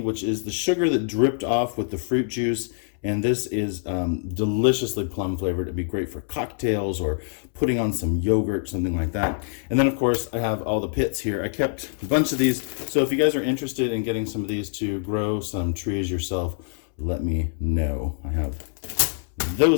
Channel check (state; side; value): silent; right; 62 dB below the other